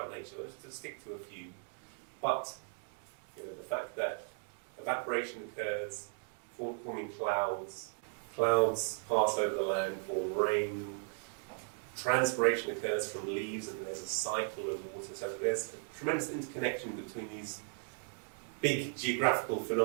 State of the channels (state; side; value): silent; left; 53 dB below the other